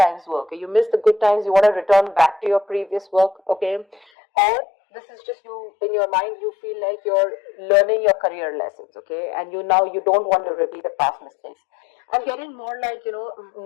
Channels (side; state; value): right; drops out; at 4.0 s